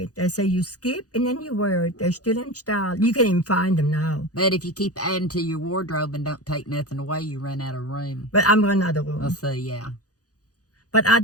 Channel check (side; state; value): right; late; 0.67 ms